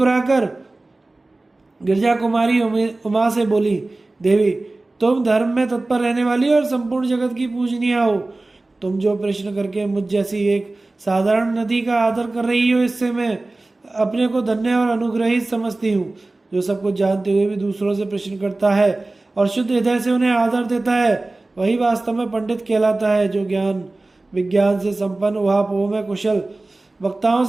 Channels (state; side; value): quieter; left; 3.0 dB